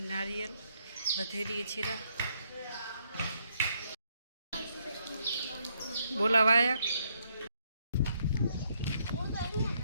નારિયેળ વધેરીએ છીએ. બોલાવાયા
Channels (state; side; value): inverted; both; correlation -0.74